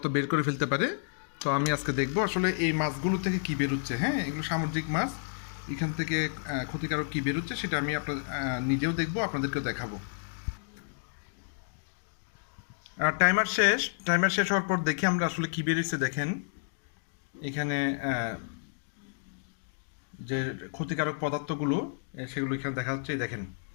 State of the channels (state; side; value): silent; right; digital silence